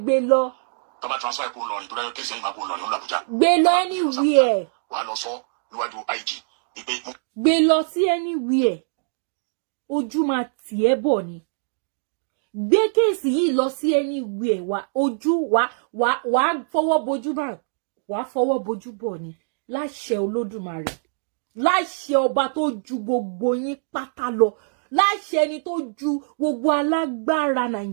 gbé lọ. Bàbá transfer ikú Ìlọrin tó dáyọ̀ kéṣe ìmọ̀ ikú Ìlọrin lọ l'Àbújá. Gbé lọ anywhere. Wà á lọ sọ níwájú IG. Gbé lọ sí anywhere. Ojú máa tì ẹ́ bọ̀ ni. Gbé kéèsì yìí lọ sí anywhere wá ojú wá fọwọ́ bojú bá wàá fọwọ́ bojú bọ̀ ni láṣẹ Olódùmarè, láṣẹ ọba tó ju gbogbo yín pátá lọ, láṣẹ ẹni tó ju gbogbo alágbára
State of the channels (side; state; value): left; silent; digital silence